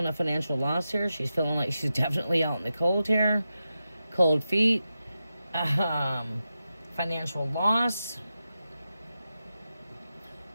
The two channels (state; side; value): inverted; both; correlation -0.90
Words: a financial loss here. She's feeling like she's definitely out in the cold here. Cold feet. Financial loss.